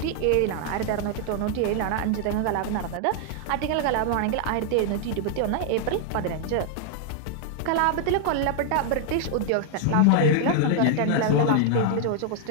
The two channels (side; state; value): both; different; correlation 0.00